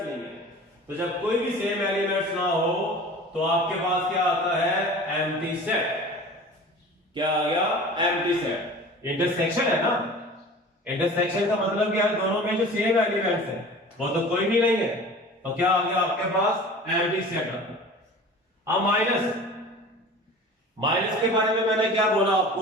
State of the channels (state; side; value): normal; both; correlation 0.40